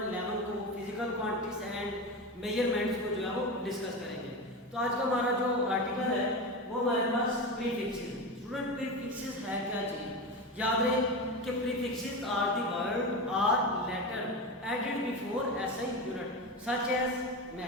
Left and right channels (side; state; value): both; normal; correlation 0.22